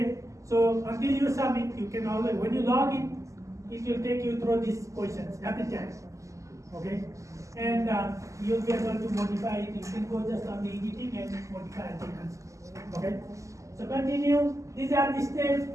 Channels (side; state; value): left; late; 0.16 ms